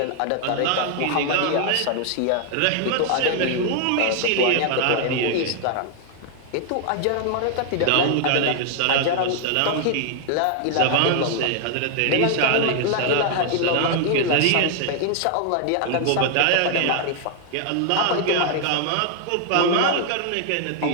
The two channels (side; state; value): both; different; correlation 0.00